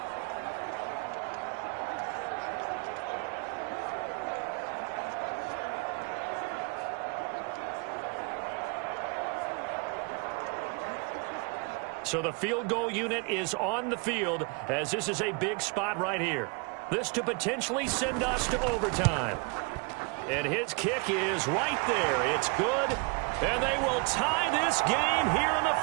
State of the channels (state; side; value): quieter; left; 32.4 dB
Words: So the field goal unit is on the field as this is a big spot right here. This to potentially send us to overtime. And his kick is right there. It's good. And they will tie this game here in the